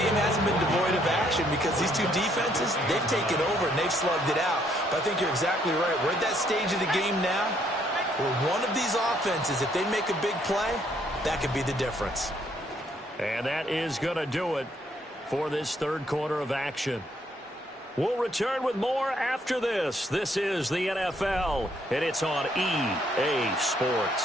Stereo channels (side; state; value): both; normal; correlation 0.69